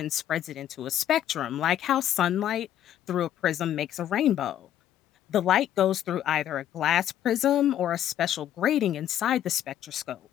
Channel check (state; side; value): quieter; right; 11.2 dB